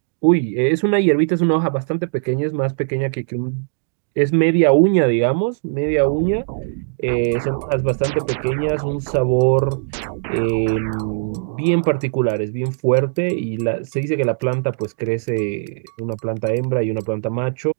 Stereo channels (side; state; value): left; silent; digital silence